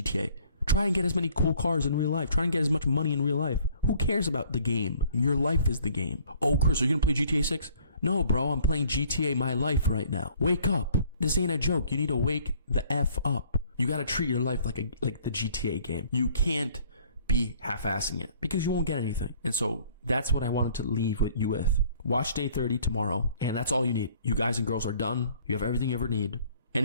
Try and get as many cool cars in real life. Try and get as much money in real life. Who cares about the game? Your life is the game. Oh, Chris, are you going to play GTA 6? No, bro, I'm playing GTA my life right now. Wake up. This ain't a joke. You need to wake the F up. You got to treat your life like the GTA game. You can't be half-assing it because you won't get anything. And so that's what I wanted to leave with you with. Watch Day 30 tomorrow, and that's all you need. You guys and girls are done. You have everything you ever need.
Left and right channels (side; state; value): both; inverted; correlation -0.57